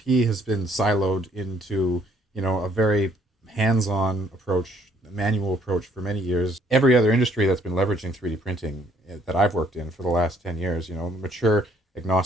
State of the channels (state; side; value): normal; both; correlation 0.65